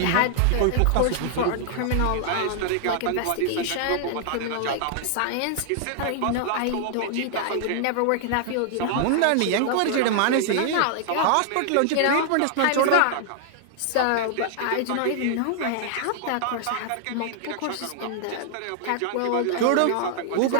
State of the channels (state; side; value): different; both; correlation -0.01